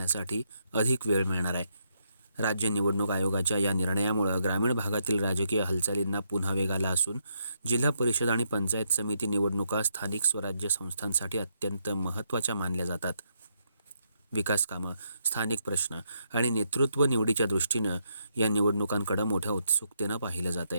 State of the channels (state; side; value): inverted; both; correlation -0.77